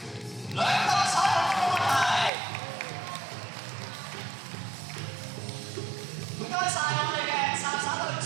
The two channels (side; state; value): left; drops out; at 2.3 s